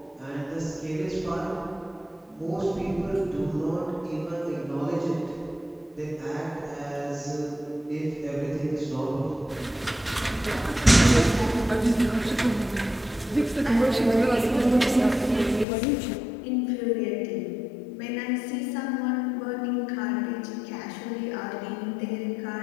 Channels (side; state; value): right; drops out; at 15.7 s